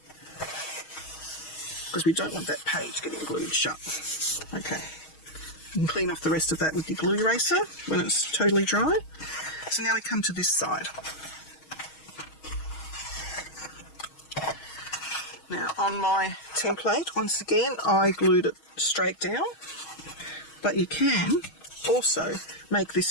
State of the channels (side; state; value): right; late; 6.3 ms